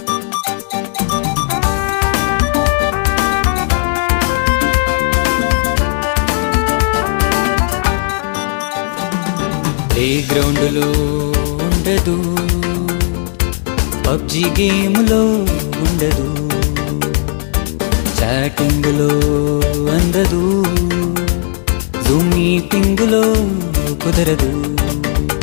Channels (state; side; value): silent; right; 55 dB below the other